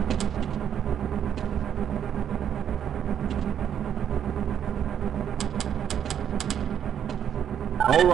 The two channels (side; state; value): left; quieter; 9.1 dB